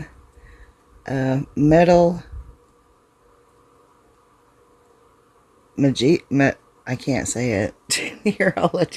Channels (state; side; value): identical; both; correlation 1.00